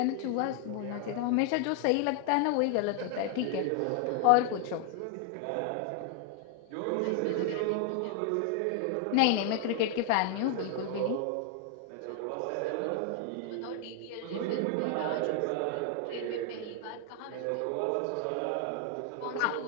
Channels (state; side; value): different; both; correlation 0.00